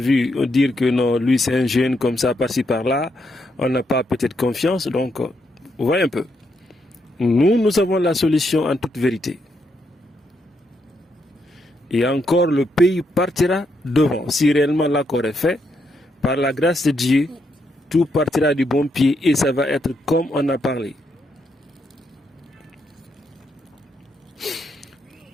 dire que non, lui c'est un jeune comme ça, par-ci par-là, on n'a pas peut-être confiance. Donc, vous voyez un peu. Nous avons la solution en toute vérité. Et encore, le pays partira devant. Si réellement l'accord est fait, par la grâce de Dieu, tout partira du bon pied et ça va être comme on a parlé.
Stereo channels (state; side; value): normal; both; correlation 0.79